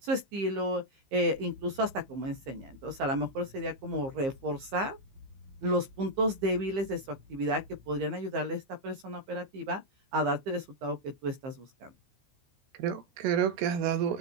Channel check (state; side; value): late; left; 15 ms